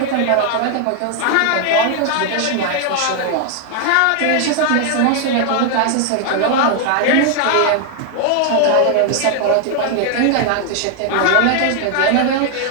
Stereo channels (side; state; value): both; different; correlation 0.00